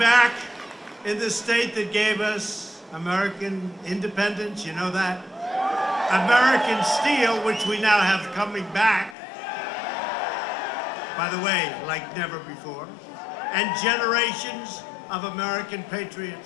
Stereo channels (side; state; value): right; drops out; at 9.2 s